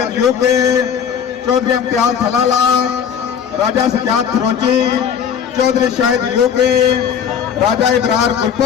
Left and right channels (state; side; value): quieter; right; 7.9 dB